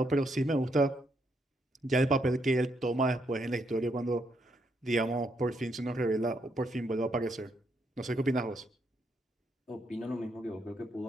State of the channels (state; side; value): normal; both; correlation 0.76